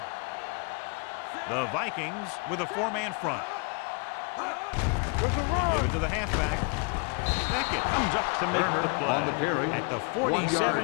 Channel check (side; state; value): right; quieter; 35.2 dB